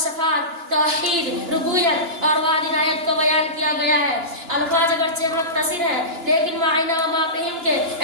صفات، توحید، ربوبیت اور وعد عنایت کو بیان کیا گیا ہے. الفاظ اگرچہ مختصر ہے لیکن معنی و مفہوم کے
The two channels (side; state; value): left; late; 2.9 ms